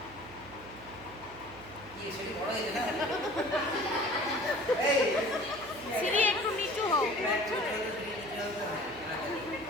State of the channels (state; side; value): noise; right; hum, 19 dB below the sound